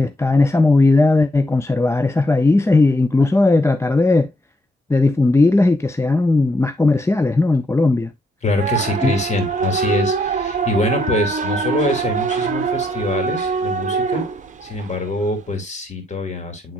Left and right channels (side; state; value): both; normal; correlation 0.77